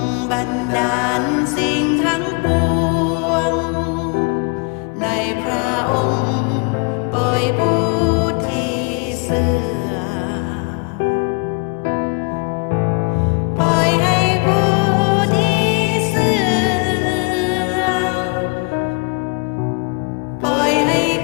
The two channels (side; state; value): right; quieter; 32.9 dB